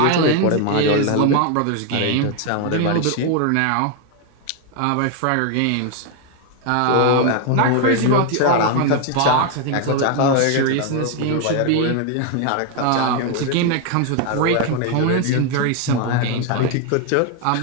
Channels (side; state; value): both; different; correlation 0.01